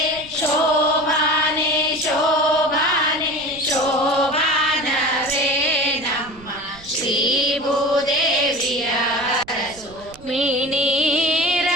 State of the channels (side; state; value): right; noise; rumble, 21 dB below the sound